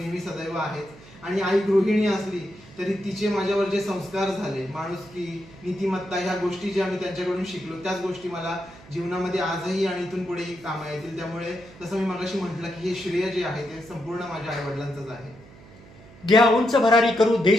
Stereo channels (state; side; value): noise; right; hum, 22 dB below the sound